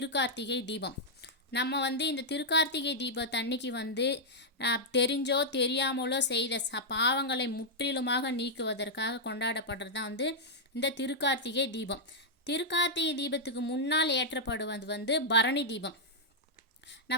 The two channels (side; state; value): both; normal; correlation -0.06